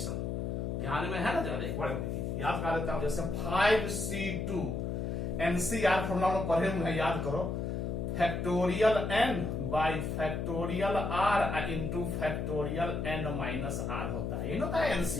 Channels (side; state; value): left; noise; hum, 2 dB below the sound